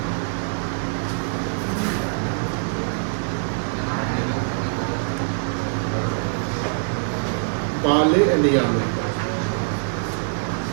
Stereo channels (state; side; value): silent; left; digital silence